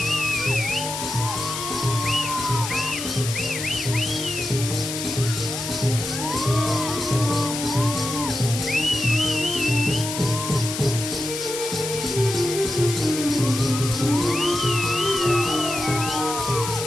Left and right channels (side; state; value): left; noise; hiss, 5 dB below the sound